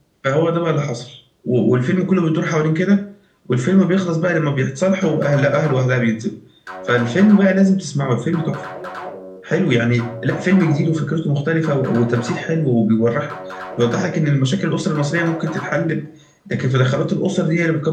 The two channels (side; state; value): both; identical; correlation 1.00